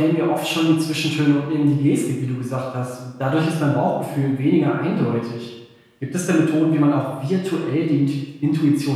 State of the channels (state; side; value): identical; both; correlation 1.00